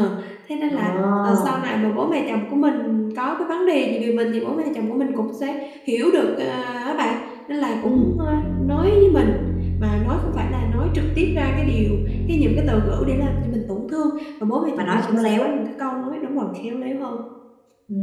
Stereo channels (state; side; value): identical; both; correlation 1.00